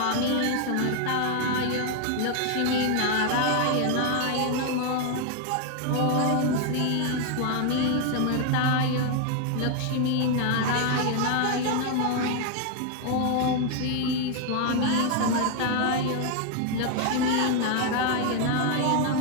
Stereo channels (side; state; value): both; different; correlation 0.00